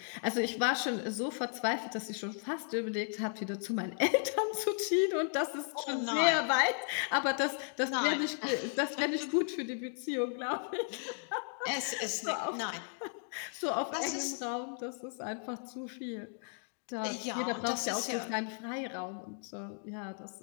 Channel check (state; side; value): silent; right; 54 dB below the other